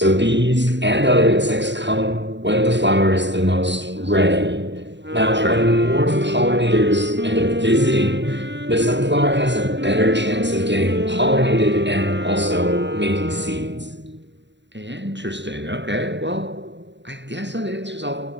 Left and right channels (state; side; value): late; left; 0.52 ms